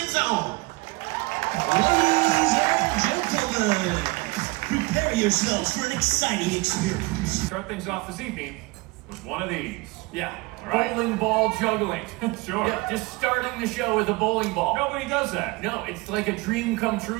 zone. Ladies and gentlemen, prepare yourselves for an exciting experience. Start things off this evening with one of these. Yeah, All right. bowling ball juggling. Sure. Yeah, just starting the show with a bowling ball. Nobody does that. No, it's like a dream come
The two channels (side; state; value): left; quieter; 24.0 dB